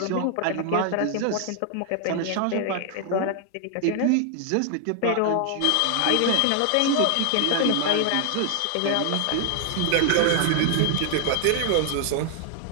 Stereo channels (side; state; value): both; different; correlation 0.00